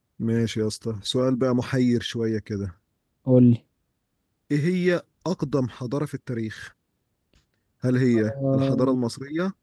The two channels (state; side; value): identical; both; correlation 1.00